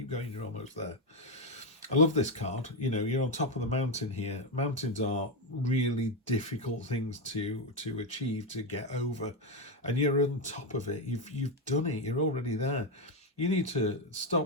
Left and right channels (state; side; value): normal; both; correlation 0.07